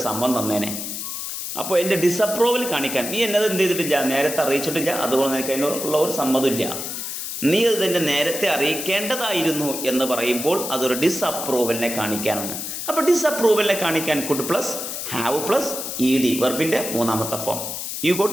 സമ്മതം തന്നേനെ. അപ്പോൾ എൻ്റെ ഡിസപ്രൂവൽ കാണിക്കാൻ നീ എന്നത് എന്ത് ചെയ്തിട്ടില്ല, നേരത്തെ അറിയിച്ചിട്ടില്ല, അതുകൊണ്ട് നിനക്ക് അതിനുള്ള ഒരു സമ്മതമില്ല. നീ അത് തന്നെ നേരത്തെ അറിയിക്കേണ്ടതായിരുന്നു എന്ന് പറയുമ്പോൾ അതൊരു ഡിസപ്രൂവലിനെ കാണിക്കാനാണ്. അപ്പോൾ ഡിസപ്രൂവലിനെ കാണിക്കാൻ could plus have plus ED വെർബിൻ്റെ മൂന്നാമത്തെ form. You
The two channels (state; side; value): noise; left; hiss, 5 dB below the sound